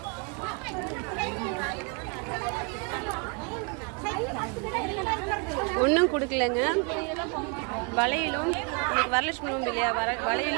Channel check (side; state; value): left; quieter; 33.7 dB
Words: ஒன்றும் கொடுக்கலங்க. வளையலும் இன்னைக்கு வரலட்சுமி உண்டு இல்லையா,